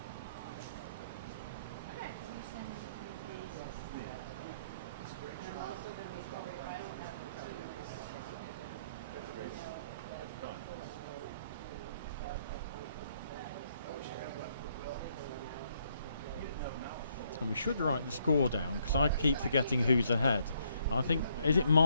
And we should write the score down because I keep forgetting who's ahead. I think, is it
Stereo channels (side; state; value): both; inverted; correlation -0.71